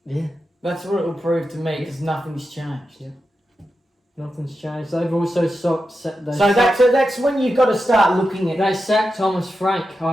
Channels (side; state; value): both; normal; correlation 0.89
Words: Yeah. That's what it will prove to me because nothing's changed. Yeah. Nothing's changed. They've also that's when you've got to start looking at... They sacked Thomas Frank